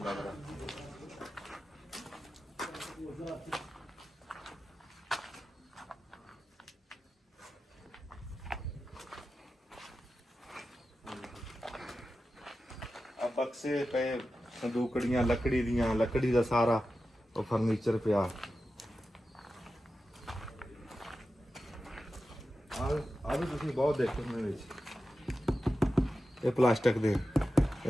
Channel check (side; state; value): both; normal; correlation 0.92